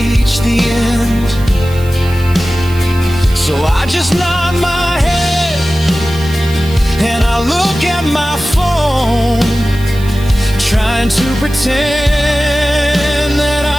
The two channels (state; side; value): noise; right; hiss, 19 dB below the sound